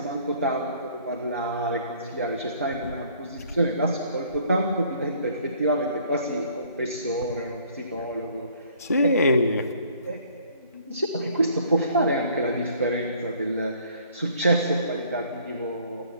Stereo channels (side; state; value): both; inverted; correlation -0.58